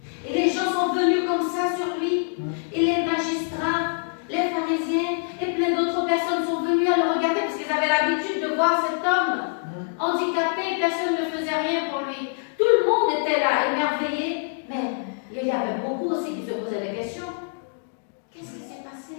Et les gens sont venus comme ça sur lui. Et les magistrats, les pharisiens et plein d'autres personnes sont venus à le regarder parce qu'ils avaient l'habitude de voir cet homme handicapé. Personne ne faisait rien pour lui. Tout le monde était là, émerveillé. Mais il y avait beaucoup aussi qui se posaient des questions. Qu'est-ce qui s'est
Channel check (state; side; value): silent; right; 62 dB below the other